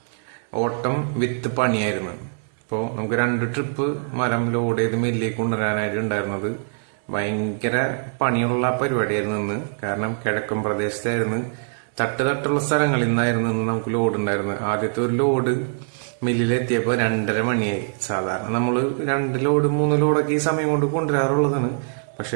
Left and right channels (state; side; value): silent; left; digital silence